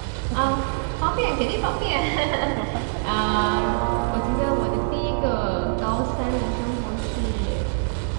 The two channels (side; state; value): left; silent; digital silence